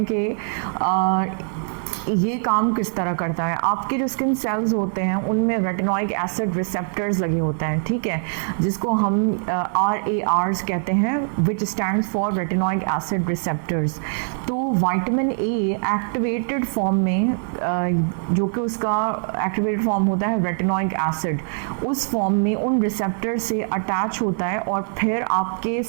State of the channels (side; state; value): left; silent; 59 dB below the other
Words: कि ये काम किस तरह करता है। आपके जो स्किन सेल्स होते हैं उनमें रेटिनोइक एसिड रिसेप्टर्स लगे होते हैं, ठीक है, जिसको हम RARs कहते हैं, विच stands for retinoic acid receptors. तो विटामिन ए एक्टिवेटेड फॉर्म में जो कि उसका एक्टिवेटेड फॉर्म होता है रेटिनोइक एसिड, उस फॉर्म में उन रिसेप्टर से अटैच होता है और फिर आपके